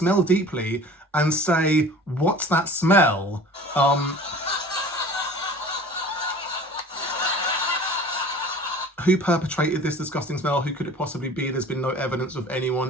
deeply, and say, "What's that smell?" Who perpetrated this disgusting smell? Who could it possibly be? There's been no evidence of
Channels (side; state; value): both; normal; correlation 0.43